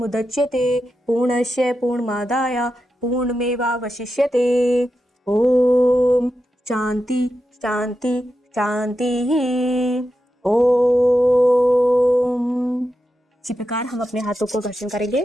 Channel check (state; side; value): normal; both; correlation 0.89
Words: पूर्णस्य पूर्णमादाय पूर्णमेवावशिष्यते। ॐ शान्ति शान्ति शान्तिः। ओम। इसी प्रकार हम अपने हाथों को घर्षण